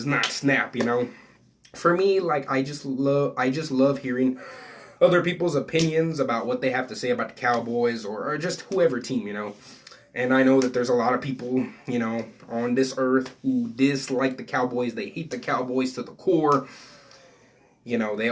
not snap. For me, like, I just love hearing other people's opinions about what they have to say about the Cowboys or just whoever team, And I know that there's a lot of people, on this earth who dislike the Cowboys. They hate the Cowboys to the core.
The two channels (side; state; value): both; identical; correlation 1.00